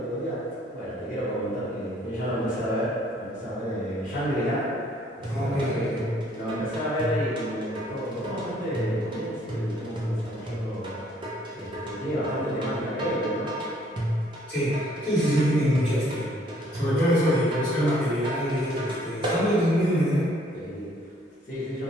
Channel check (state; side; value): normal; both; correlation 0.63